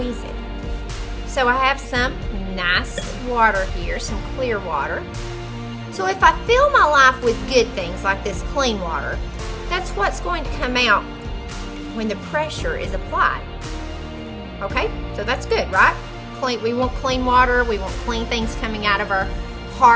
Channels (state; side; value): identical; both; correlation 1.00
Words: it. So I have some nice water here, some clear water. So if I fill my life with good things like this clean water, that's what's going to come out when the pressure is applied. Okay, so that's good, right? We want clean water, we want clean things coming out of our